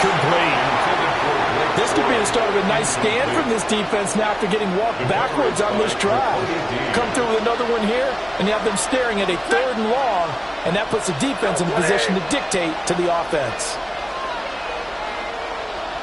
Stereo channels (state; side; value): identical; both; correlation 1.00